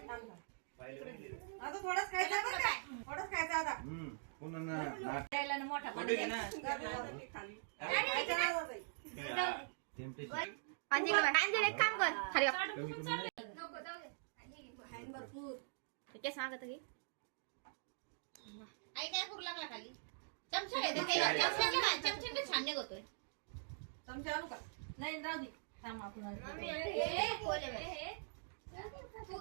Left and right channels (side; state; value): left; silent; digital silence